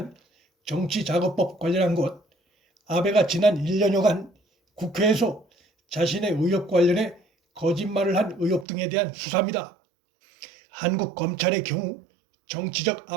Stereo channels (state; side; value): drops out; left; at 8.7 s